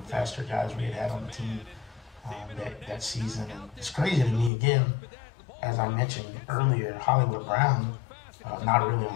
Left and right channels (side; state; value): right; drops out; at 4.5 s